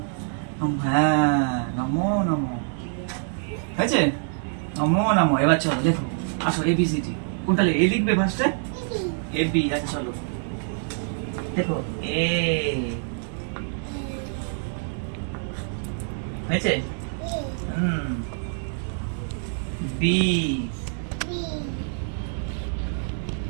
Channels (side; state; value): left; silent; 61 dB below the other